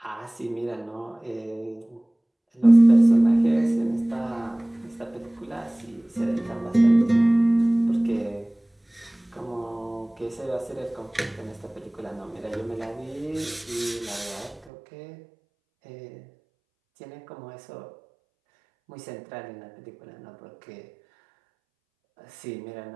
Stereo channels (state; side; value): drops out; left; at 14.7 s